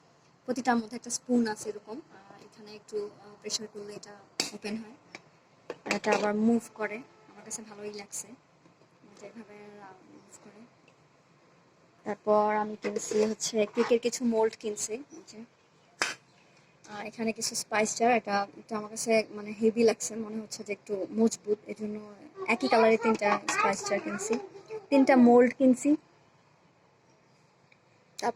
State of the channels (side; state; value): both; identical; correlation 1.00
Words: প্রতিটার মধ্যে একটা স্পুন আছে এরকম। এখানে একটু প্রেসার করলে এটা ওপেন হয়। আর এটা আবার মুভ করে। আমার কাছে ভালোই লাগছে, এটা এভাবে মুভ করে। তারপর আমি কিনছি হচ্ছে কেকের কিছু মোল্ড কিনছি, এই যে। আর এখানে কিছু স্পাইস জার। এটা এটা আমার কাছে মানে হেভি লাগছে, মনে হচ্ছে যে একটু মজবুত, এই জন্য একই কালারের তিনটা স্পাইস জার কিনছি, তিনটা মোল্ড কিনছি।